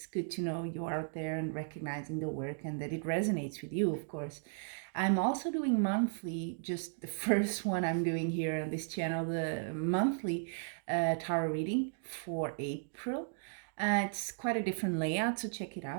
good to know you're out there and recognizing the work and that it resonates with you, of course. I'm also doing monthly, just the first one I'm doing here on this channel, the monthly tarot reading for April. It's quite a different layout, so check it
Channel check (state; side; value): silent; left; digital silence